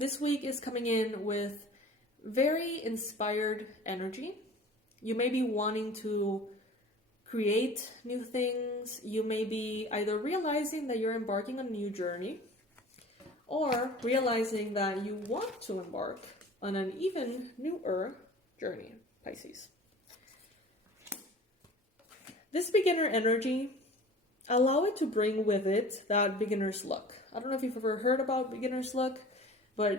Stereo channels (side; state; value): both; normal; correlation 0.43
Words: week is coming in with very inspired energy. You may be wanting to create new things. You may be either realizing that you're embarking on a new journey, or realizing that you want to embark on an even newer journey, Pisces. This beginner energy, allow it to bring with it that beginner's luck. I don't know if you've ever heard about beginner's luck,